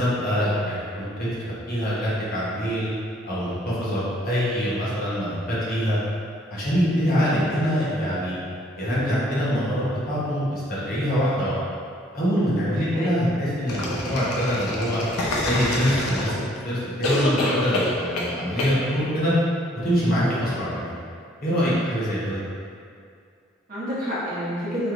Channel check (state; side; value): normal; both; correlation 0.63